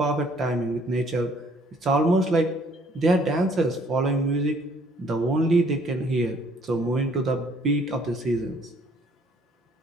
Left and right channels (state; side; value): normal; both; correlation 0.61